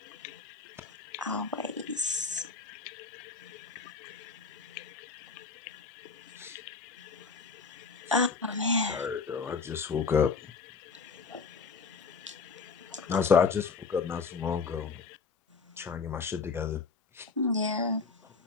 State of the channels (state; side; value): quieter; right; 4.9 dB